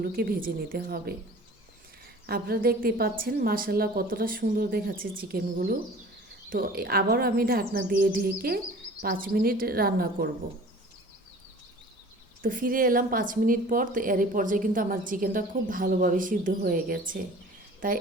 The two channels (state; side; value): normal; both; correlation 0.45